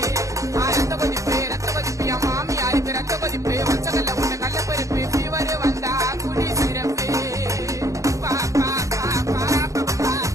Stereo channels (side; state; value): left; late; 0.15 ms